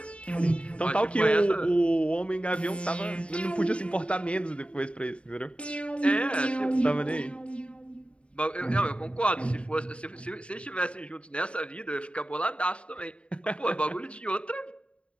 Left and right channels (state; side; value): late; right; 0.059 ms